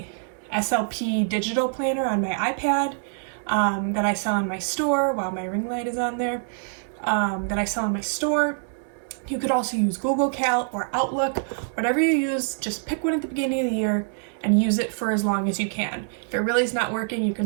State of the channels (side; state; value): left; silent; 61 dB below the other